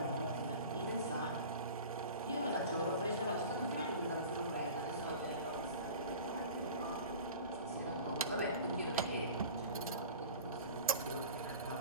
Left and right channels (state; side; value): inverted; both; correlation -0.38